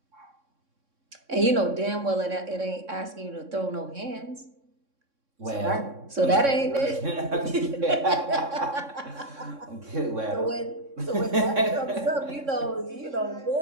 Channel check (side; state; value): left; late; 3.6 ms